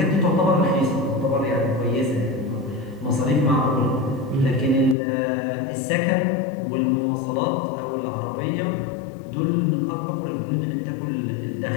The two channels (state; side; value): drops out; right; at 5.0 s